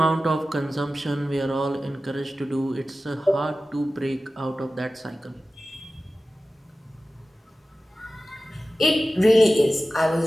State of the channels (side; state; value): both; normal; correlation 0.95